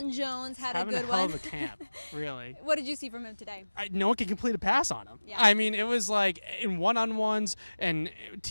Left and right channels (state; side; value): inverted; both; correlation -1.00